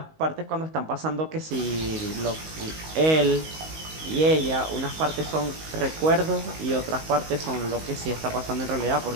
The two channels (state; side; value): late; left; 19 ms